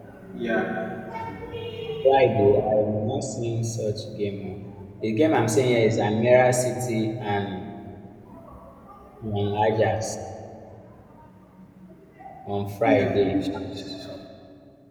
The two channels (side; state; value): both; identical; correlation 1.00